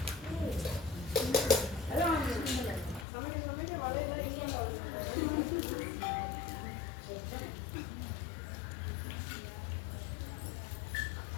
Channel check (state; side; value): drops out; right; at 3.1 s